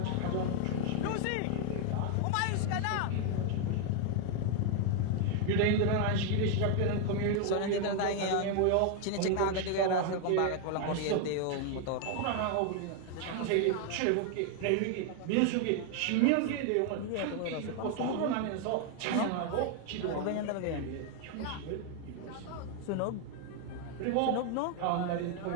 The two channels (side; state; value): both; different; correlation 0.00